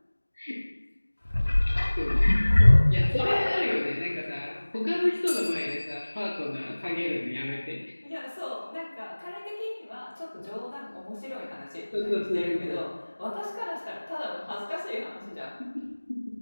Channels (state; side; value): inverted; both; correlation -1.00